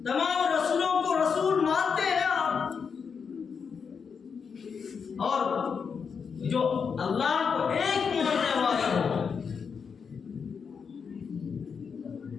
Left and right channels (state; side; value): quieter; right; 6.1 dB